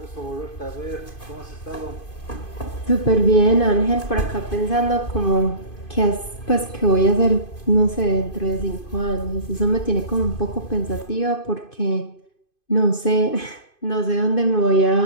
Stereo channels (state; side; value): late; right; 2.5 ms